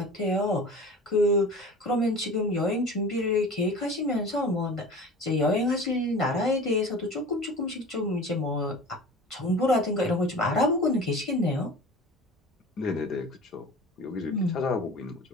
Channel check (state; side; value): normal; both; correlation 0.38